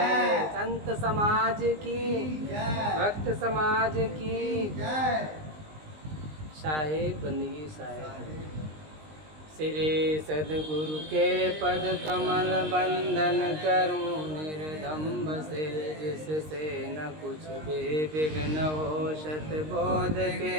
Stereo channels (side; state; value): left; late; 19 ms